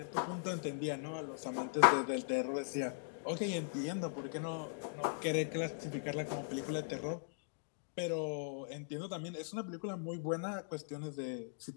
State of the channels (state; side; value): silent; right; digital silence